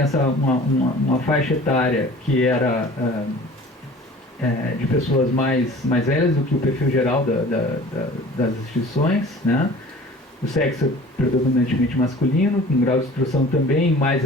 uma faixa etária que era de pessoas mais velhas do que o perfil geral das instituições, né? O sexo é predominantemente masculino, com grau de instrução também mais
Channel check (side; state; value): both; normal; correlation 0.44